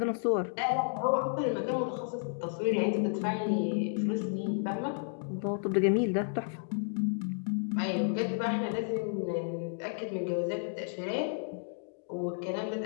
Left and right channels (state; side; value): silent; right; digital silence